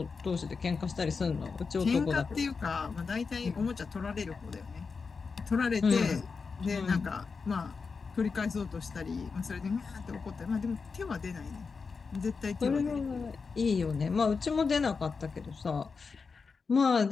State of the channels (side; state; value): right; quieter; 5.0 dB